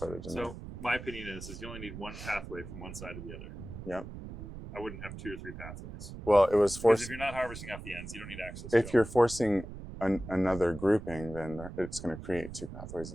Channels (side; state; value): right; noise; rumble, 11 dB below the sound